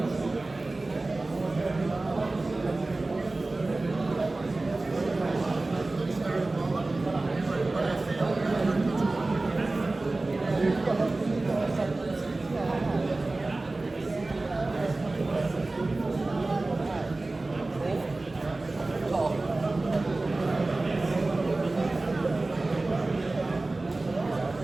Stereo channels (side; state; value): left; quieter; 3.1 dB